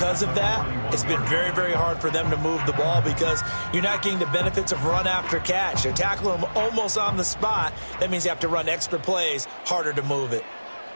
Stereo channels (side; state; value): both; inverted; correlation -1.00